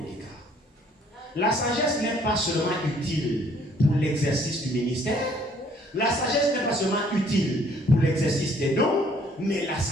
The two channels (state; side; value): normal; both; correlation 0.61